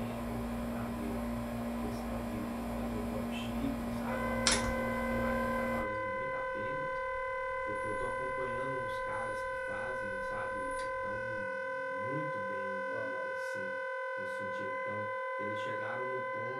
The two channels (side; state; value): both; identical; correlation 1.00